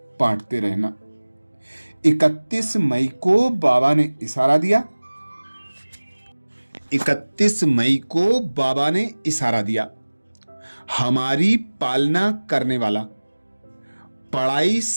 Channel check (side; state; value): both; inverted; correlation -1.00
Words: बांटते रहना। 31 मई को बाबा ने इशारा दिया, 31 मई को बाबा ने इशारा दिया, हमारी पालना करने वाला, पढ़ाई